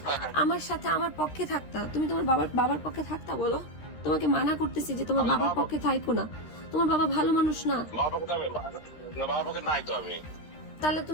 আমার সাথে আমার পক্ষে থাকতা। তুমি তোমার বাবার পক্ষে থাকতা বলো? তোমাকে মানা করতেছি যে তোমার বাবার পক্ষে থাইকো না। তোমার বাবা ভালো মানুষ না। বাবার পক্ষে নাই তো আমি। তাহলে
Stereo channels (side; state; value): right; late; 13 ms